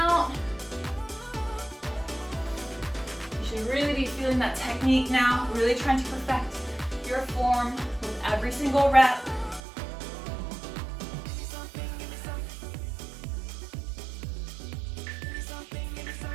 You should really be feeling that technique now, really trying to perfect your form with every single rep.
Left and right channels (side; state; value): left; drops out; at 9.6 s